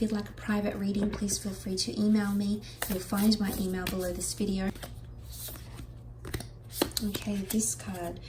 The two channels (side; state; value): both; identical; correlation 1.00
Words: you'd like a private reading, please feel free to email me. You'll find my email below this video. Okay, this card,